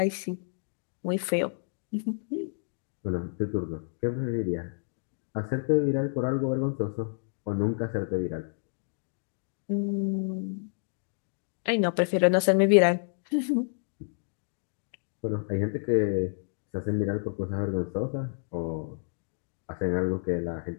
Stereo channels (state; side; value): silent; right; digital silence